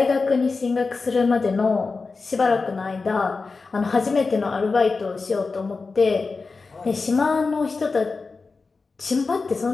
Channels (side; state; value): right; quieter; 4.2 dB